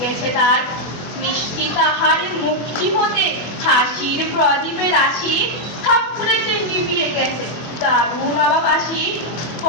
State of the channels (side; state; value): right; late; 24 ms